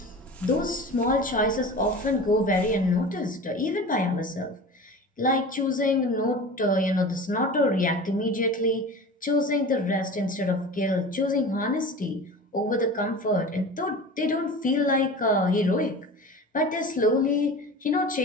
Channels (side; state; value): both; normal; correlation 0.35